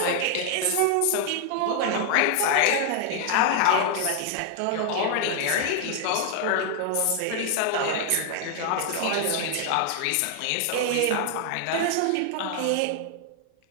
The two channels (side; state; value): both; different; correlation 0.00